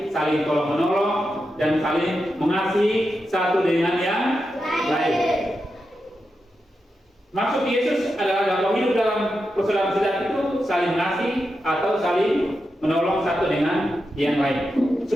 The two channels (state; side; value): normal; both; correlation 0.88